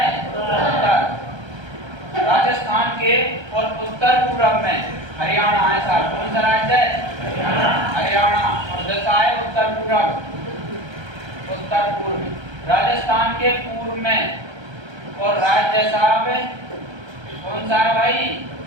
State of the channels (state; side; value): late; left; 1.3 ms